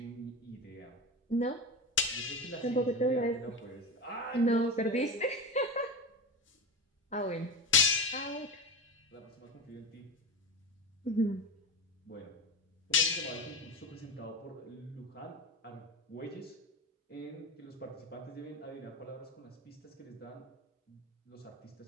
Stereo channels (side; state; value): both; normal; correlation 0.23